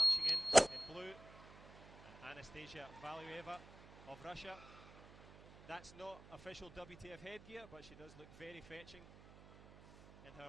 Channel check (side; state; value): right; noise; hum, 19 dB below the sound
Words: in blue. And Anastasia Valueva of Russia. That's not official WTF headgear, but she does look very fetching in